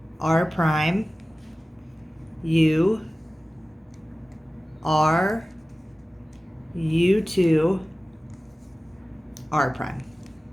R prime, U, R, U2, R prime.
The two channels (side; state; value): both; normal; correlation 0.97